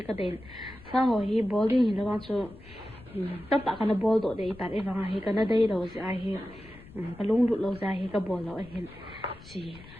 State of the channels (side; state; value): left; noise; rumble, 20 dB below the sound